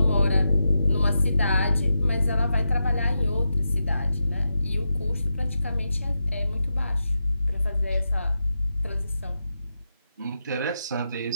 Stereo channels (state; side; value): inverted; both; correlation -0.88